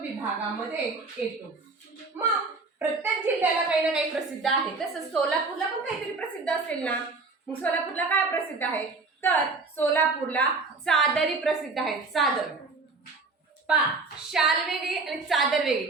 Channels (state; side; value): quieter; left; 3.9 dB